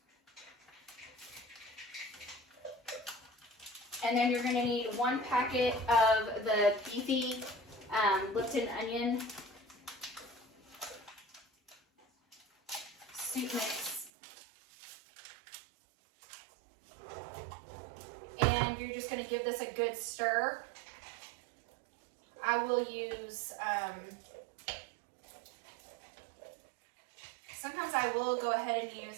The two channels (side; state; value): left; drops out; at 14.1 s